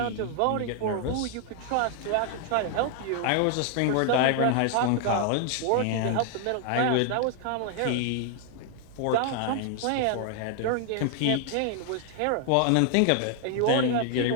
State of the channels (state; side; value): different; both; correlation 0.00